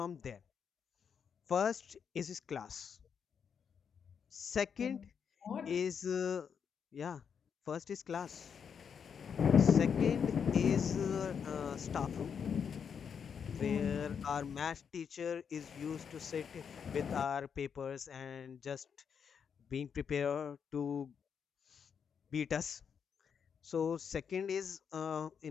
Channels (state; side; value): quieter; right; 7.0 dB